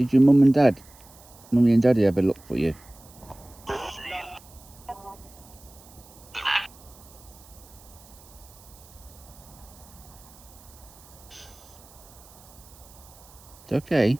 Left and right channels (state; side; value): noise; right; hiss, 23 dB below the sound